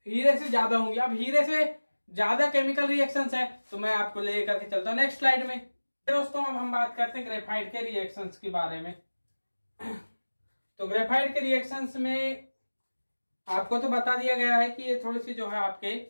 हीरे से ज्यादा होंगी। अब हीरे से ज्यादा केमिकल रिएक्शंस है तो मैं आपको लेकर के चलता हूं नेक्स्ट स्लाइड में। दोस्तों अब हम बात करते हैं ग्रेफाइट के रिएक्शंस के बारे में। तो ग्रेफाइट के रिएक्शंस में आपको तो बता दिया गया है कि ये थोड़ी सी जो है आपके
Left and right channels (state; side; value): inverted; both; correlation -1.00